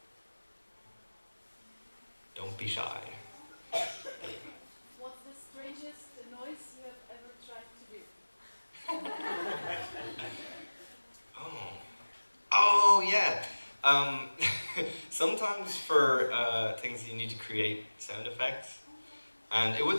Don't be shy. What's the strangest noise you have ever tried to do? Oh yeah. Sometimes for things you need to create sound effects, and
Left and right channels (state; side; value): inverted; both; correlation -1.00